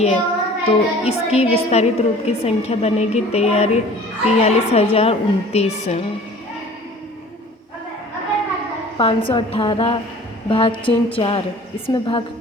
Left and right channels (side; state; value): both; normal; correlation 0.47